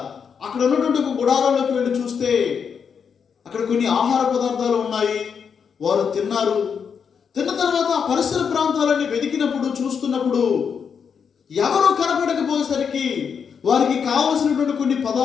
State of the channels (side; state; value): right; quieter; 6.7 dB